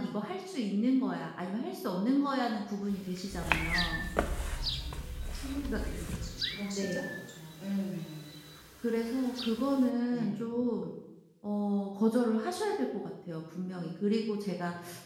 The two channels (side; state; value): both; identical; correlation 1.00